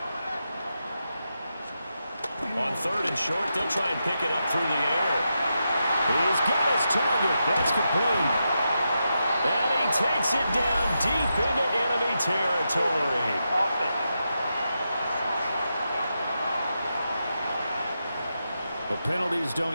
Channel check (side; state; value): both; inverted; correlation -0.87